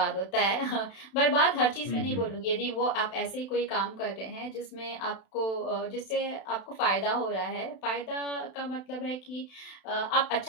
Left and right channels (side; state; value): right; late; 32 ms